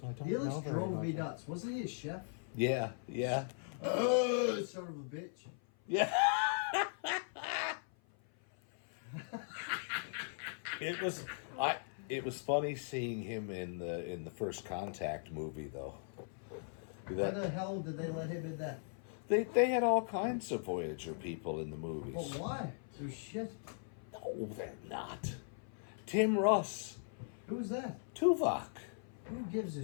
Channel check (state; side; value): silent; right; 52 dB below the other